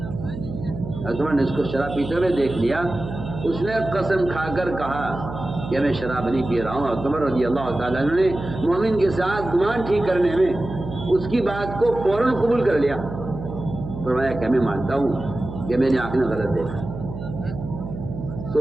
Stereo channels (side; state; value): right; noise; hum, 9 dB below the sound